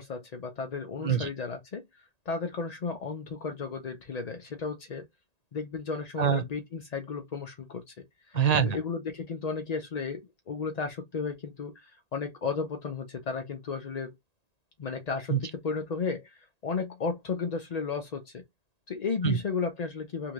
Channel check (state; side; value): late; right; 1.9 ms